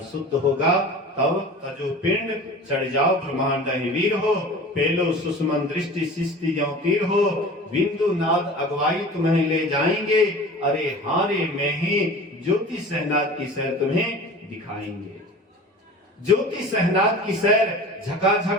शुद्ध होगा। तब तजो पिंड चढ़ जाओ ब्रह्मांड वीर हो, पेलो सुषमन दृष्टि शिष्टि ज्यों तीर हो, बिंदु नाद अगवाई तुम्हें ले जाएंगे, अरे हारे में ही ज्योति सहनाद की सैर तुम्हें दिखाएंगे। ज्योति सहनाद की सैर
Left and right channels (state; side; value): normal; both; correlation 0.38